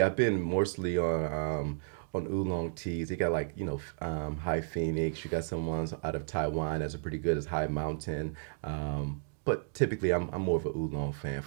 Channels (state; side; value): silent; left; digital silence